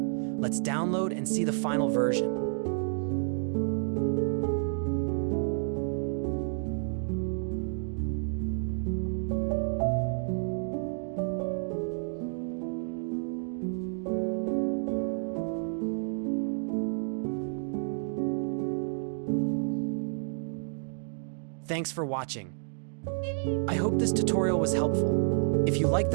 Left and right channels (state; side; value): silent; left; 58 dB below the other